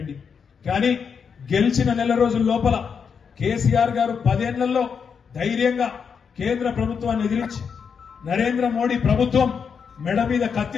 కానీ గెలిచిన నెల రోజుల లోపల కేసీఆర్ గారు 10 ఏళ్లలో ధైర్యంగా కేంద్ర ప్రభుత్వాన్ని ఎదిరించి నరేంద్ర మోడీ ప్రభుత్వం మెడ మీద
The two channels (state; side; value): quieter; right; 6.4 dB